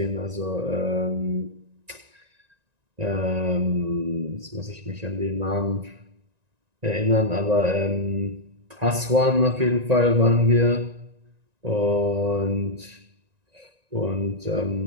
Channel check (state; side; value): late; left; 1.9 ms